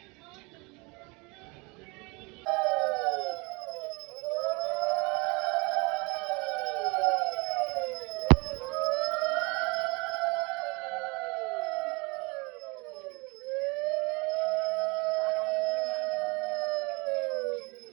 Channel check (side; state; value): left; quieter; 27.8 dB